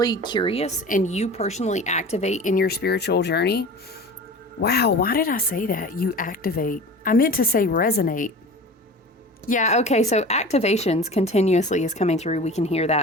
curious and you personally activate in your spiritual journey, wow, why did I say that? You activate. I meant to say resonate. Yeah, okay, so activations continuously is coming through. We can hear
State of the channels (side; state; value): both; normal; correlation 0.36